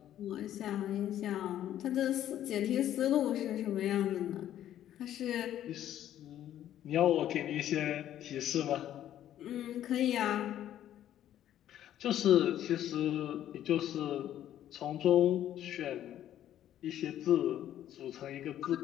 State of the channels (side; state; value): right; quieter; 11.7 dB